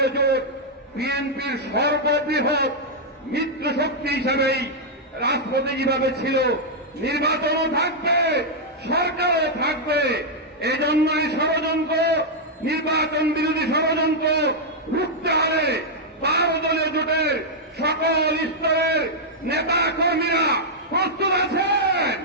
জোট বিএনপির সর্ববৃহৎ মিত্র শক্তি হিসাবেই রাজপথে যেভাবে ছিল, নির্বাচনও থাকবে, সরকারও থাকবে। এই জন্যই ষড়যন্ত্র, নির্বাচন বিরোধী ষড়যন্ত্র রুখতে হবে। 12 দলীয় জোটের সকল স্তরের নেতা কর্মীরা প্রস্তুত আছেন।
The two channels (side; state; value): both; normal; correlation -0.05